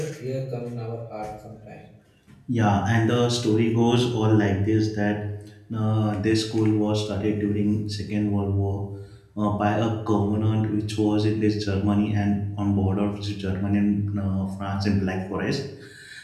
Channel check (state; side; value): identical; both; correlation 1.00